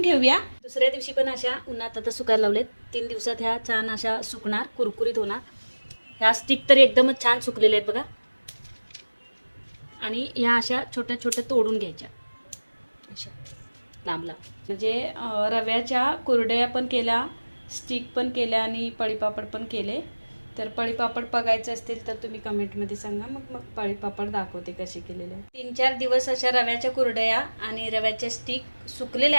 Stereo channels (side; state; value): both; inverted; correlation -1.00